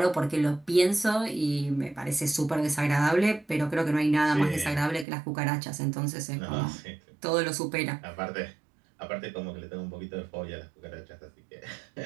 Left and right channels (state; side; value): drops out; left; at 5.1 s